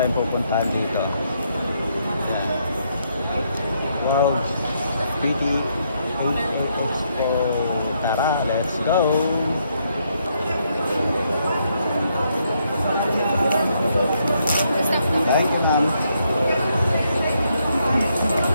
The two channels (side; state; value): both; inverted; correlation -0.75